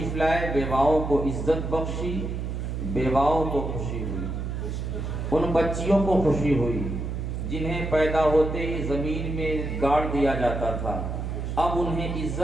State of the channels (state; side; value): noise; right; hum, 4 dB below the sound